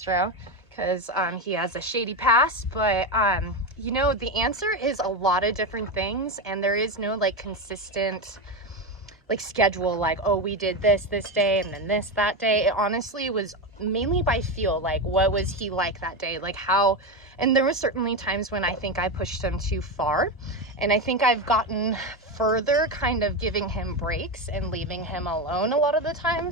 because he has a shady past. But you know, the answer is a lot of different things, and there is no like consistent like schedule, like, oh, we did this day and then this that day. It honestly was mainly by feel, like what was he like that day, like how. And there was certainly times when I think I pushed him too far, and I think I've gotten further kind of giving him breaks and leaving him alone a lot of the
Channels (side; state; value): both; normal; correlation 0.14